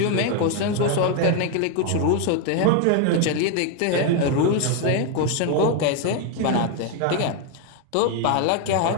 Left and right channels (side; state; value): both; different; correlation 0.01